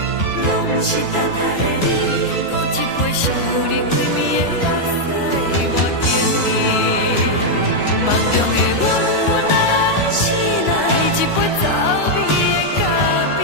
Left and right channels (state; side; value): late; right; 3.3 ms